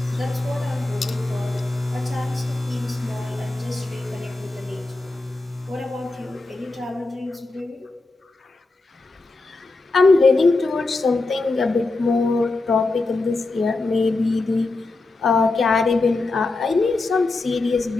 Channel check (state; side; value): quieter; right; 3.3 dB